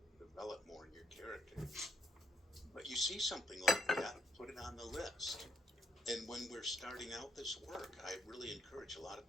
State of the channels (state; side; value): normal; both; correlation 0.73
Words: develop more in your character? But you see something like that, put it on the list. And when we're starting out this work, I really encourage a lot of